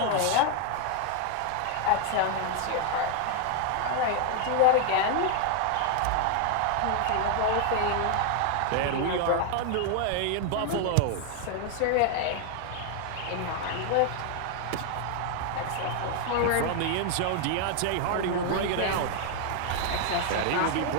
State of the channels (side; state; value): both; different; correlation 0.00